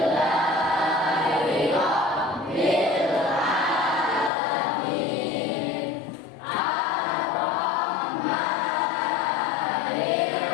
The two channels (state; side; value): drops out; right; at 4.3 s